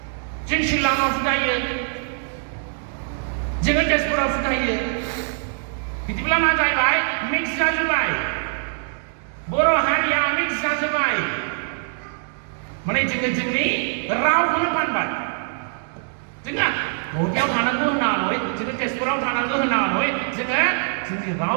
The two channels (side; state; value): left; silent; 63 dB below the other